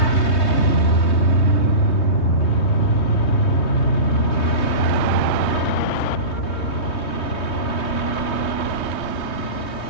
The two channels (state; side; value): late; right; 3.2 ms